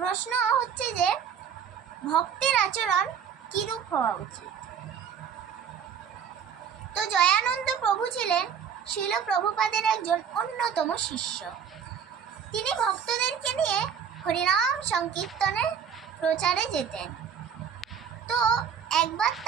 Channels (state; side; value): quieter; left; 7.6 dB